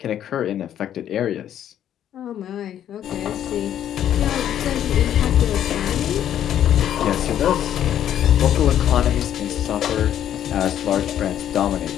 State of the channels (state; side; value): quieter; right; 10.6 dB